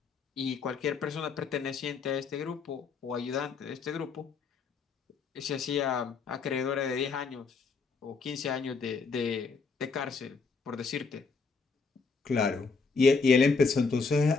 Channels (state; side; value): quieter; right; 4.7 dB